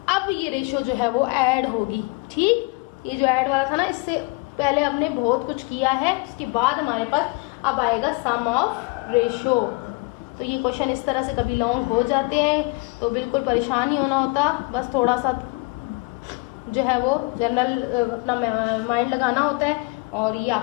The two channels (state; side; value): quieter; right; 28.3 dB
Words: अब ये रेशो जो है वो ऐड होगी। ठीक, ये जो ऐड वाला था ना, इससे पहले हमने बहुत कुछ किया है, उसके बाद हमारे पास अब आएगा सम ऑफ रेशो। तो ये क्वेश्चन इस तरह से कभी लॉन्ग हो जाते हैं तो बिल्कुल परेशान नहीं होना होता, बस थोड़ा सा जो है वो जनरल अपना माइंड लगाना होता है। और ये